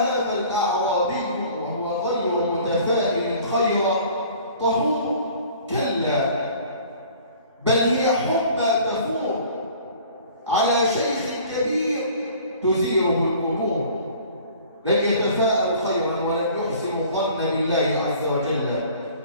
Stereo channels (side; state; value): both; inverted; correlation -0.49